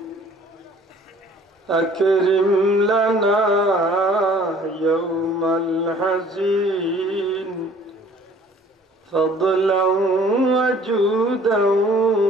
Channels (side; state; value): both; normal; correlation 0.54